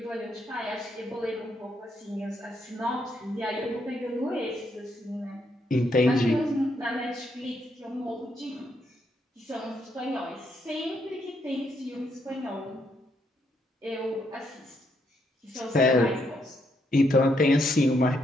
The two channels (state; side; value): normal; both; correlation 0.76